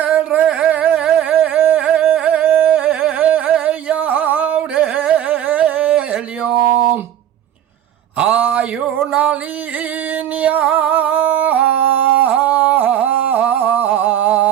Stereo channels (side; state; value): left; quieter; 10.7 dB